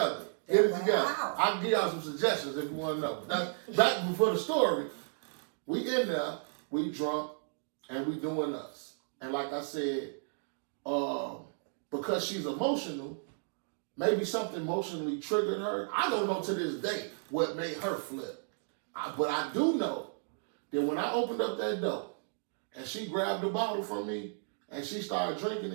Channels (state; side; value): silent; left; digital silence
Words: Get it together. I can give y'all some suggestions if you want to know. Now, back before the story, we in there, we drunk, and we doing us. And like I said, because she's emotional, maybe something emotionally triggered her. I don't know to this day what made her flip. But I do know that when I opened up that door and she grabbed the bottle from me and she started drinking